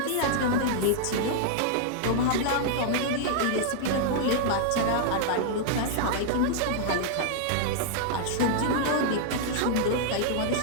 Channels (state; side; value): different; both; correlation -0.01